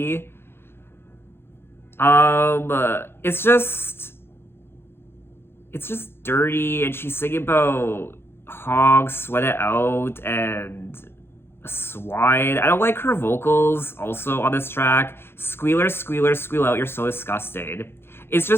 It's just dirty, and she's singing about hogs, sweat it out, and a swine. I don't like her vocals also on this track. Squealer, squealer, squeal out, you're so disgusted. It's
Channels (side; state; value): right; late; 0.11 ms